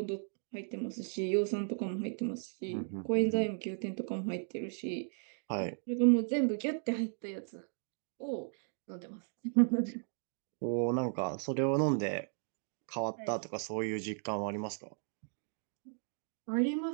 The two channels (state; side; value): silent; left; 54 dB below the other